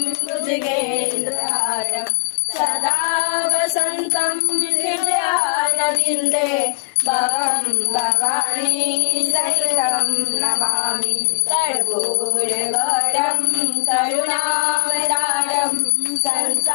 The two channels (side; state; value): right; silent; digital silence